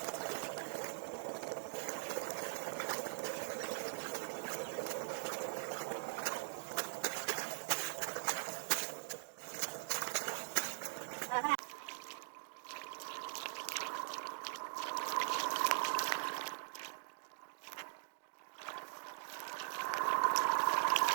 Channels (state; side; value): silent; left; digital silence